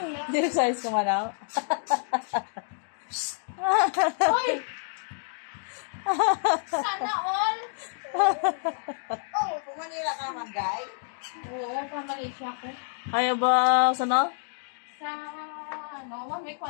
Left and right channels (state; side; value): silent; right; digital silence